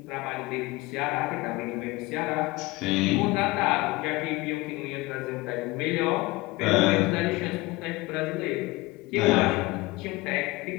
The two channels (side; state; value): right; quieter; 21.8 dB